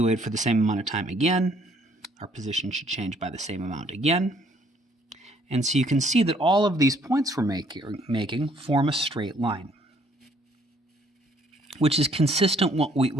wait for the same amount of time again, our position should change by the same amount again. And so you can see that all of these points we're making form a straight line, which is consistent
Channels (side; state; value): both; normal; correlation 0.64